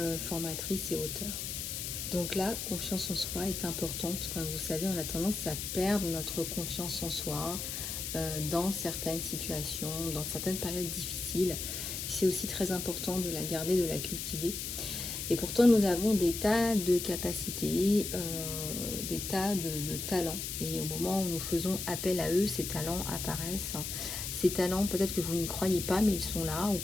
formatrice et auteure. Donc la confiance en soi est importante. Comme vous savez, on a tendance à perdre notre confiance en soi dans certaines situations, dans certaines périodes difficiles. C'est aussi très important de la garder, de la cultiver. Et pourtant, nous avons des tas de capacités, des tas de talents. Et au moment où nous faisons appel à eux, ces talents apparaissent. Ces talents, peut-être que vous n'y croyez pas, mais ils sont là. Ou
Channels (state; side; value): noise; left; hiss, 4 dB below the sound